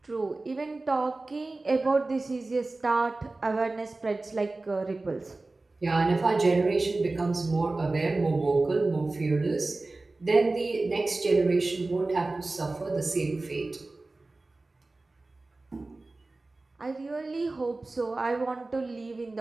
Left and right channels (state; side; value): quieter; left; 3.2 dB